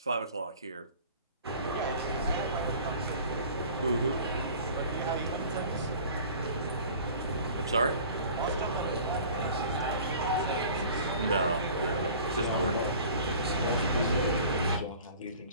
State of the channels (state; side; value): inverted; both; correlation -0.45